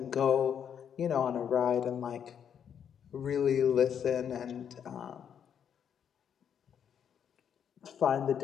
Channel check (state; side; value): quieter; right; 8.3 dB